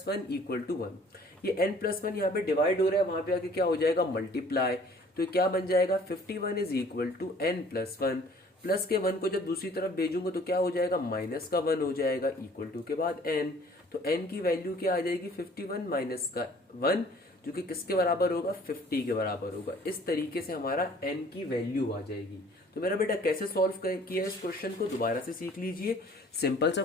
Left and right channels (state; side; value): normal; both; correlation 0.54